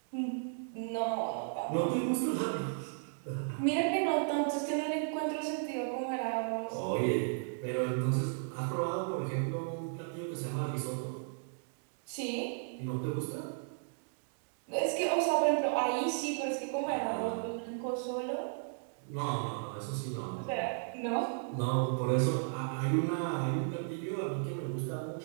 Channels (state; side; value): silent; left; digital silence